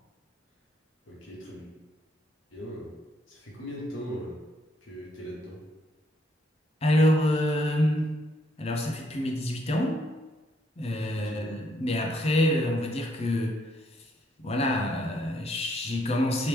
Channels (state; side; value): normal; both; correlation 0.72